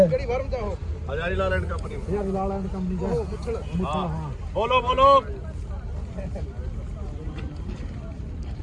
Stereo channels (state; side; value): identical; both; correlation 1.00